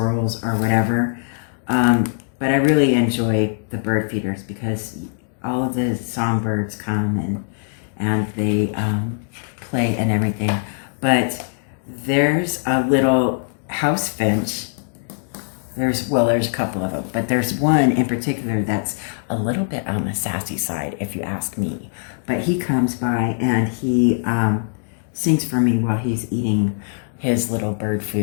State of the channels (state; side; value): silent; right; digital silence